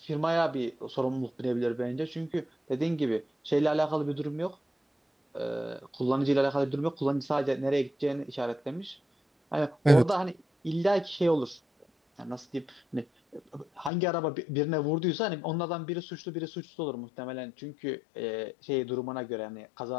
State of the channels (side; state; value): right; drops out; at 13.9 s